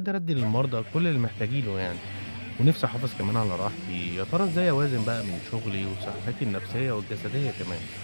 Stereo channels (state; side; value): inverted; both; correlation -1.00